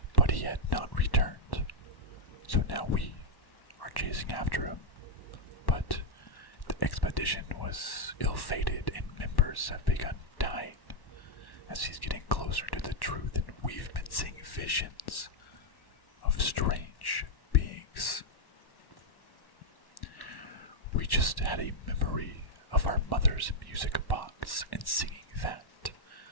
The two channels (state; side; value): late; right; 1.1 ms